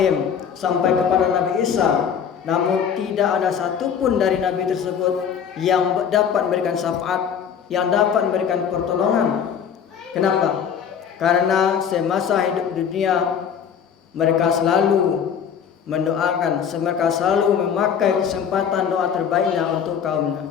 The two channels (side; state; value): right; quieter; 7.7 dB